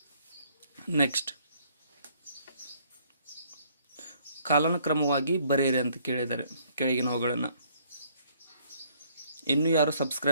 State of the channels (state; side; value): inverted; both; correlation -0.64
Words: ನೆಕ್ಸ್ಟ್, ಕಾಲಾನುಕ್ರಮವಾಗಿ ಬರೆಯಿರಿ ಅಂತ ಕೇಳಿದ್ದಾರೆ ಕೆಳಗಿನವುಗಳನ್ನು. ಇನ್ನೂ ಯಾರು